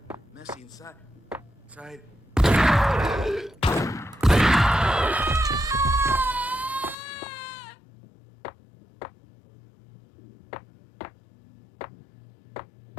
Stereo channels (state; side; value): drops out; right; at 7.0 s